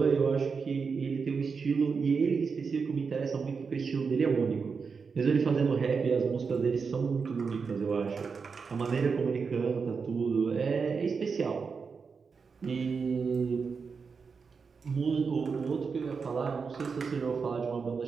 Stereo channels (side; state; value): left; quieter; 5.3 dB